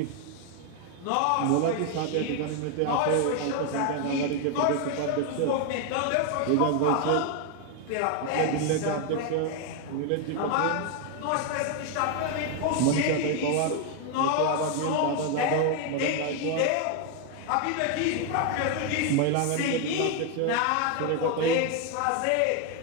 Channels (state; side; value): different; both; correlation 0.01